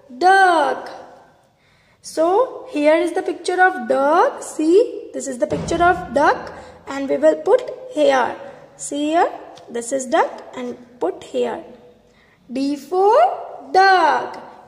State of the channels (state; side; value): identical; both; correlation 1.00